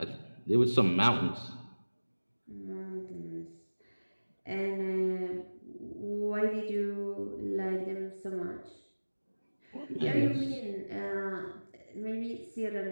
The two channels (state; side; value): inverted; both; correlation -1.00